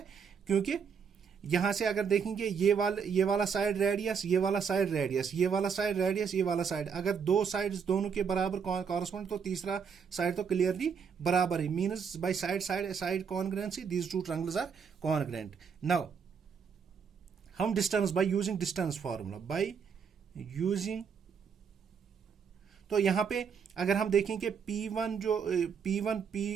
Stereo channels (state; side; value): quieter; left; 6.5 dB